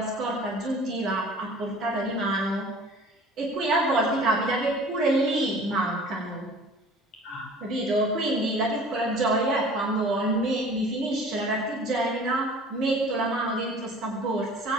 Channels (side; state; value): both; normal; correlation 0.46